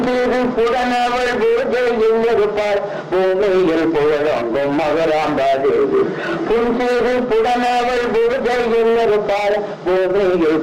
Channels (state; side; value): identical; both; correlation 1.00